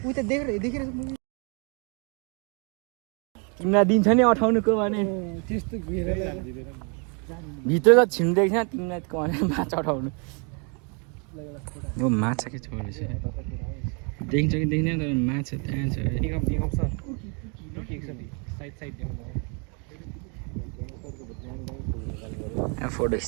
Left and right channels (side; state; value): left; quieter; 35.9 dB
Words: उही त देखेर तिमीलाई दिन्छ नि अठाउनुको भने त्यस्तो घेर भित्र त छिन्देको छैन तिमीलाई भने माछा अठाउनु माछा के छोडेको छ देखिन्छ कि देखिँदैन तर माछा त्यहाँ छ फोटो